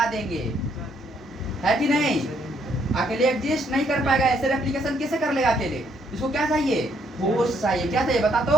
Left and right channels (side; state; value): both; normal; correlation 0.71